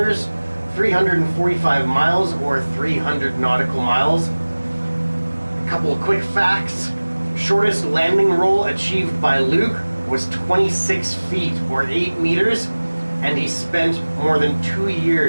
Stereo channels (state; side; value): inverted; both; correlation -1.00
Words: 345 miles or 300 nautical miles. A couple of quick facts. Shortest landing roll achieved by Luke was 26 feet or 8 meters, and he spent more than 2